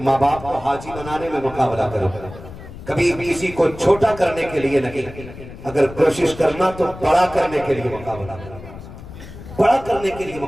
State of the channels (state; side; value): noise; left; rumble, 14 dB below the sound